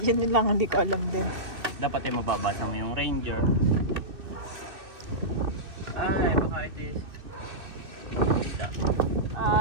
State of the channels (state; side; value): late; left; 2.6 ms